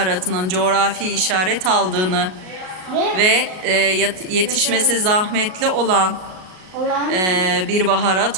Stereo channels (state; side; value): late; left; 38 ms